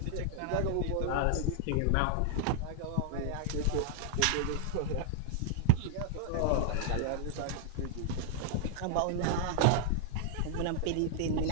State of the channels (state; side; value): different; both; correlation 0.00